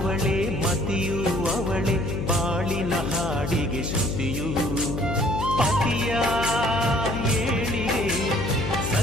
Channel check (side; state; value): left; noise; hum, 3 dB below the sound